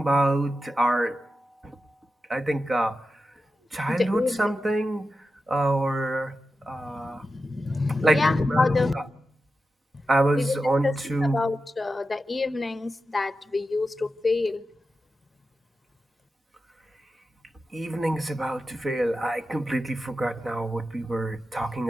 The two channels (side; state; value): both; normal; correlation 0.91